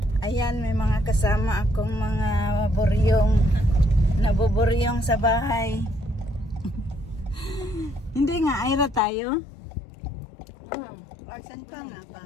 Ayan, may mga kasama akong mga buryong. Nabuburyong sa bahay. Hindi nga, Ira tayo. Saan pa nga ba?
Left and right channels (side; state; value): right; drops out; at 9.0 s